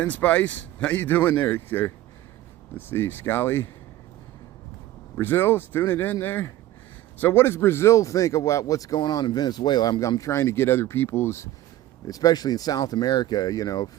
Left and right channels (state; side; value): quieter; left; 14.5 dB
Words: Spice, how you doing there? Let's see, Scally. Brazil's tuning in there. So what does Brazil think about what's going on in Venezuela? I'm trying to get other people's, especially in South America, you know,